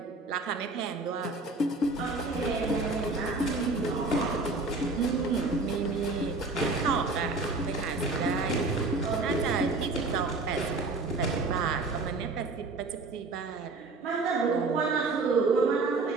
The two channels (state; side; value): quieter; left; 3.5 dB